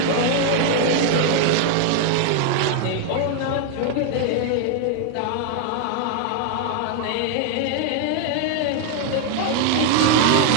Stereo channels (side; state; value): both; different; correlation 0.00